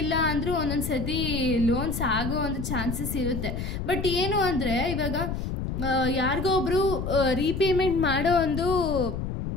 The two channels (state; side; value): noise; left; rumble, 4 dB below the sound